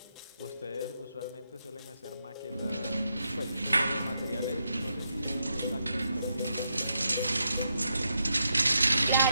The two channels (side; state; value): both; inverted; correlation -0.82